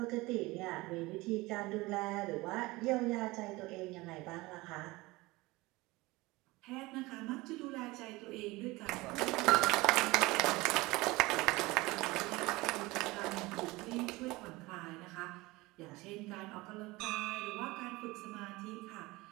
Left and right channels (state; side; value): quieter; left; 21.5 dB